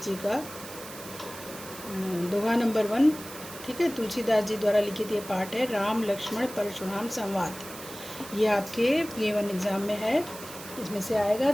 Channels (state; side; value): noise; right; hiss, 14 dB below the sound